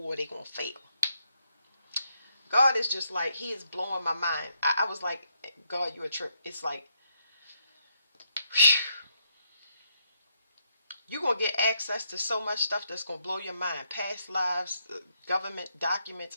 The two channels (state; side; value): inverted; both; correlation -0.75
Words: they're going to fail. God is just like, he is blowing my mind. I was like, God, you a trip. It's like, you're going to get access to so much stuff that's going to blow your mind. Past lives, government documents,